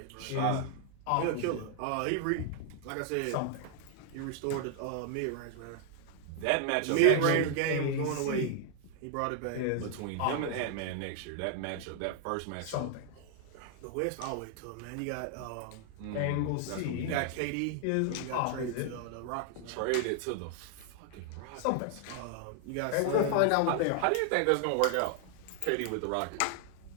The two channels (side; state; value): both; different; correlation 0.00